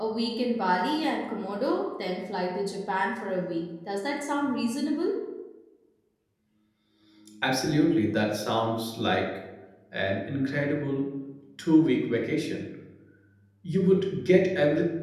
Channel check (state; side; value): identical; both; correlation 1.00